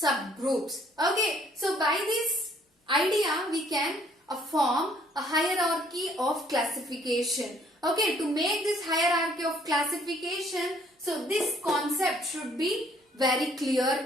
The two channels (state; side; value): normal; both; correlation 0.62